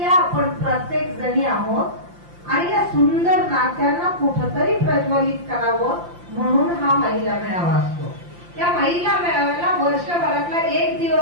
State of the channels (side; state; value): left; late; 5.8 ms